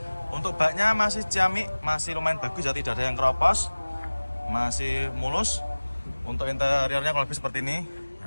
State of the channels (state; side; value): inverted; both; correlation -1.00